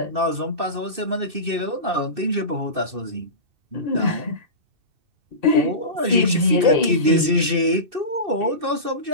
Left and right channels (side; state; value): left; late; 2.6 ms